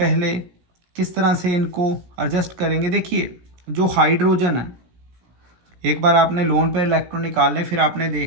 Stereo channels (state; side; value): late; left; 17 ms